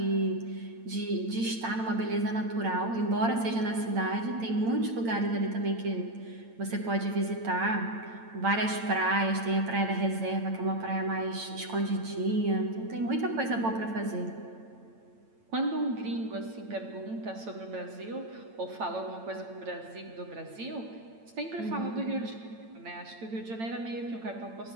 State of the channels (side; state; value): left; late; 8.9 ms